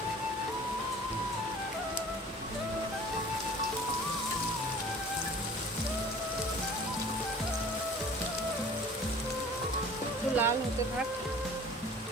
একটু লাল হতে থাক।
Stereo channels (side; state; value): both; normal; correlation 0.46